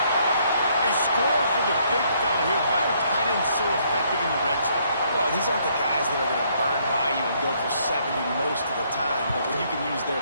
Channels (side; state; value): both; inverted; correlation -0.68